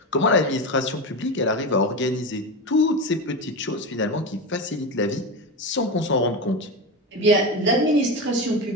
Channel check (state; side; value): normal; both; correlation 0.20